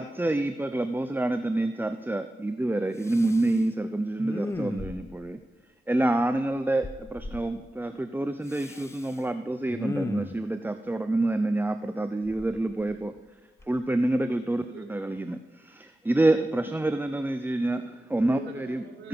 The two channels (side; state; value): both; normal; correlation 0.94